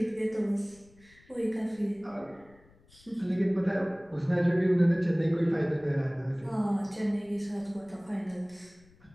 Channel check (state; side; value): noise; left; rumble, 28 dB below the sound